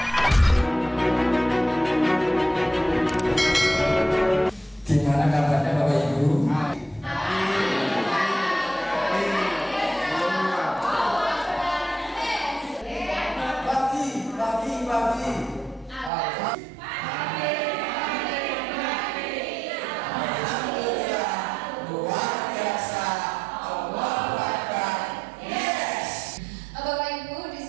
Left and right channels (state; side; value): drops out; left; at 16.1 s